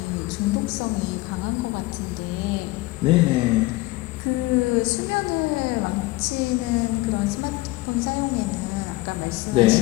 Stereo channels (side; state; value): right; quieter; 20.2 dB